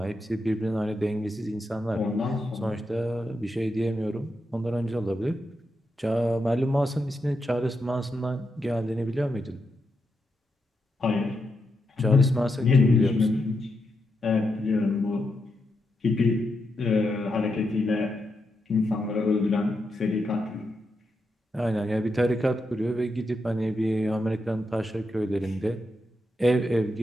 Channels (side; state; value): both; normal; correlation 0.85